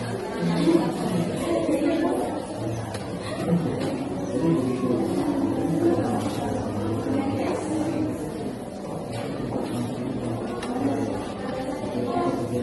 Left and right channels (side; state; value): both; identical; correlation 1.00